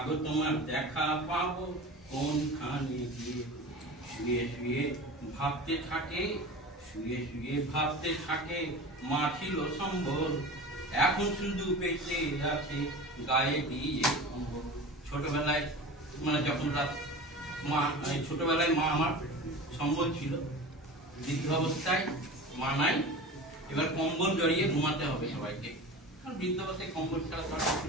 তোমার দেখা পাবো কোনখানে গিয়ে। শুয়ে শুয়ে ভাবতে থাকে, শুয়ে শুয়ে ভাবতে থাকে, মা ছিল সম্বল, এখন শুধু বেঁচে আছে গায়ে দিয়ে কম্বল। ছোটবেলায় মানে যখন মা, ছোটবেলায় মা আমার সম্বল ছিল, বৃদ্ধ অবস্থায় মা নাই, এবার কম্বল জড়িয়ে ঘুমাতে হবে সবাইকে, কারণ বৃদ্ধ অবস্থায় কম্বল ছাড়া তো কিছু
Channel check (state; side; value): normal; both; correlation 0.33